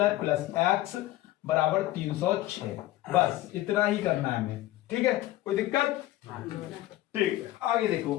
प्लस x बराबर 306। बस इतना ही करना है हमें। ठीक है, कोई दिक्कत? ठीक है, आगे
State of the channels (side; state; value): right; quieter; 15.7 dB